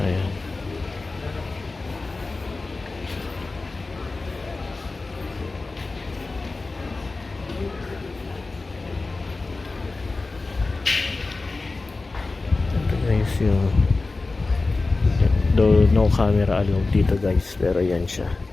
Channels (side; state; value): right; quieter; 3.5 dB